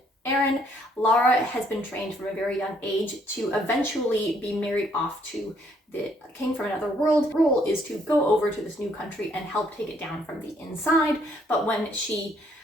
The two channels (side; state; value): both; normal; correlation 0.67